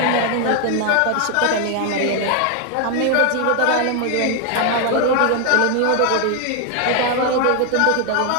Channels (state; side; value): different; both; correlation 0.01